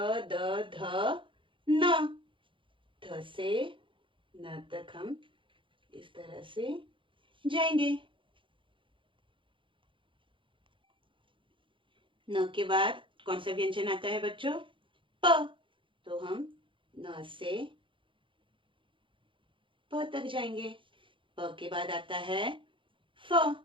द ध न। ध से न तक हम इस तरह से जाएंगे। न के बाद कौन सा व्यंजन आता है बच्चों? प। तो हम न से प तक जाएंगे। प के बाद आता है फ।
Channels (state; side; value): late; left; 0.25 ms